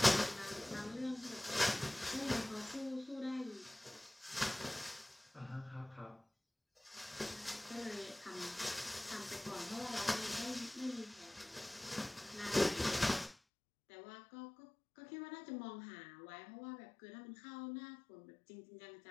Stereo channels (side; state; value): right; drops out; at 13.4 s